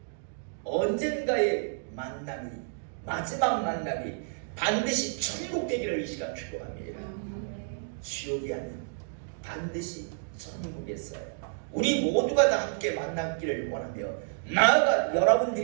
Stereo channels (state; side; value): silent; left; digital silence